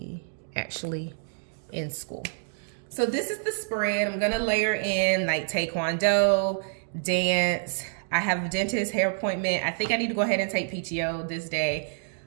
actually in school. So this is the spread. I'm gonna layer in like taekwondo, dance. I have a dentist hair appointment. I think I need to go ahead and take PTO this day.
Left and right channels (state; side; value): silent; left; digital silence